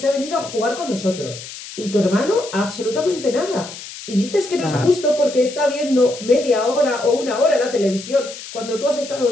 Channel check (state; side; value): noise; left; hiss, 13 dB below the sound